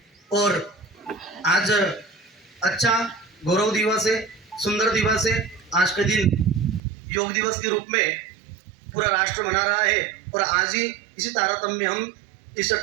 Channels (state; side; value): drops out; left; at 6.8 s